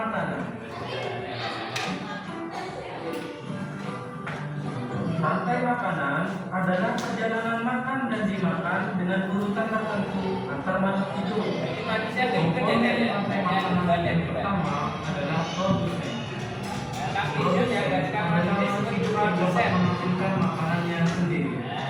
Rantai makanan adalah perjalanan makan dan dimakan dengan urutan tertentu antar makhluk hidup. Jadi manusia Komponen rantai makanan yang pertama adalah produsen. Produsen adalah makhluk hidup yang dapat menghasilkan makanannya sendiri.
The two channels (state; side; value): identical; both; correlation 1.00